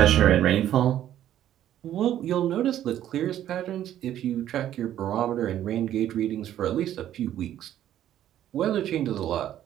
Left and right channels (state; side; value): quieter; left; 11.7 dB